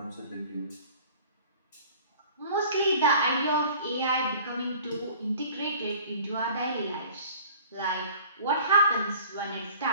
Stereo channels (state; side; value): inverted; both; correlation -0.47